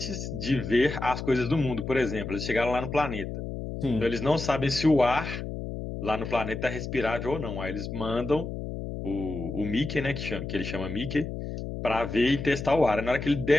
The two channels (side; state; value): left; noise; hum, 6 dB below the sound